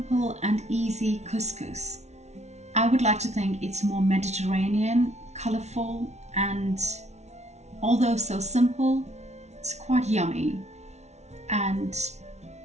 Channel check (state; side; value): late; left; 0.32 ms